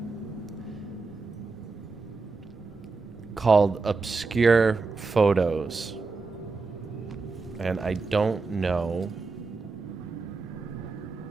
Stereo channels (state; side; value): quieter; left; 4.1 dB